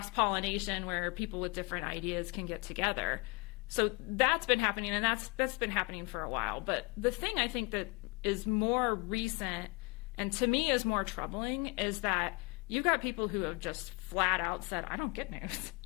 where people with different ideas can get together. So that's been happening, and that's been happening for a while. But the thing I think that is more recent, and to me is more troubling, is that you've got people who have just flat out said, I don't get news.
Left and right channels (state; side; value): quieter; right; 27.3 dB